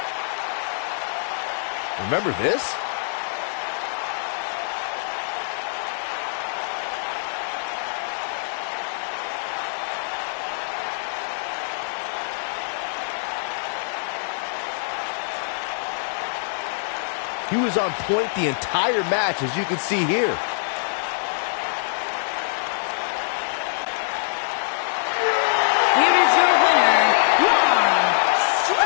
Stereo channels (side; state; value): right; silent; digital silence